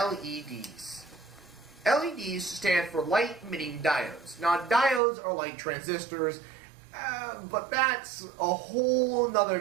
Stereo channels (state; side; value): drops out; left; at 5.0 s